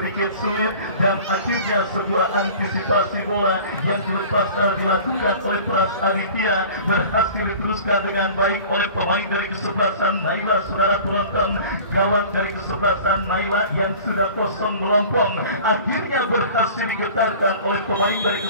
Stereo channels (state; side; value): inverted; both; correlation -0.43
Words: sulit dan akhirnya sebuah antisipasi bola yang dilepaskan dilakukan oleh Pras Aditya berhasil diteruskan dengan baik oleh pemain dari kesebelasan Naila. Saudara penonton, gawang dari kesebelasan Naila yang sudah kosong melompong akhirnya berhasil digetarkan oleh pemain dari